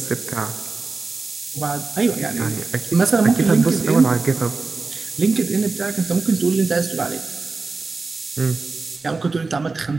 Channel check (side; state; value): left; quieter; 4.0 dB